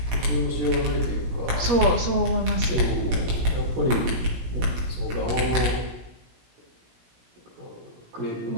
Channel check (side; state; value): left; late; 17 ms